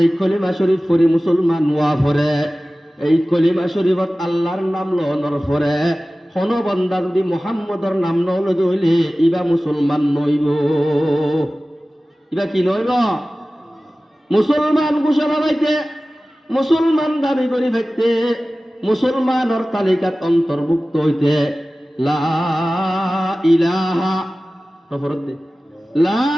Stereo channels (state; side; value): normal; both; correlation 0.96